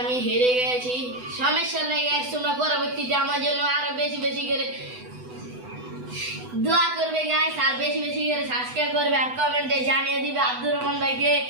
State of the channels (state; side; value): late; left; 8.0 ms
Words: হেরে গেছি, সমস্যা নেই গাইস, তোমরা পরবর্তীতে আমার জন্য আরো বেশি বেশি করে দোয়া করবে গাইস, আর বেশি বেশি করে সাবস্ক্রাইব করবে, আর কমেন্টে জানিয়ে দিবে আব্দুর রহমান ভাইকে